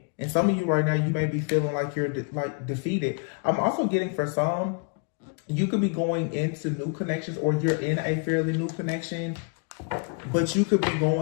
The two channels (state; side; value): quieter; right; 38.2 dB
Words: And some of you right now, you may be feeling like you're defeated. I'm also getting for some, you could be going into new connections, or you're in a fairly new connection, but you could be